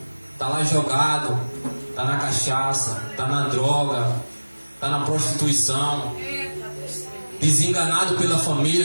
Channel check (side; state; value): both; inverted; correlation -1.00